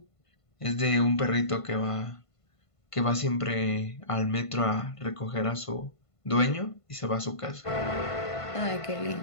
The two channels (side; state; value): right; late; 1.5 ms